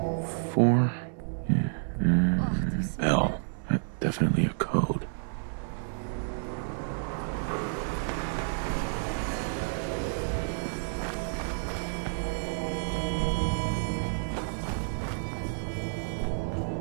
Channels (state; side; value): silent; left; digital silence